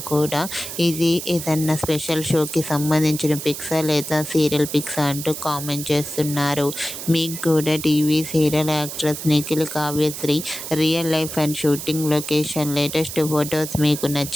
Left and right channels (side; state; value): right; noise; hiss, 8 dB below the sound